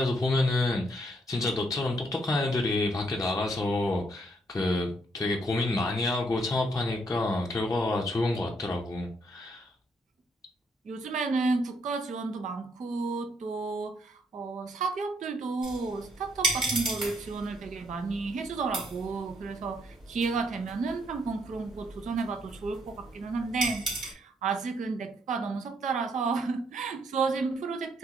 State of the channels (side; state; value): both; normal; correlation 0.72